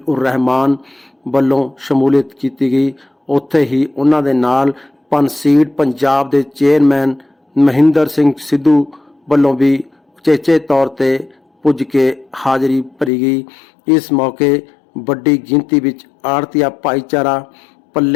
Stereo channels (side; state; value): right; drops out; at 13.1 s